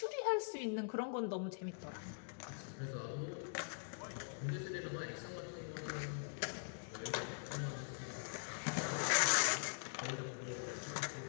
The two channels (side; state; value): right; silent; digital silence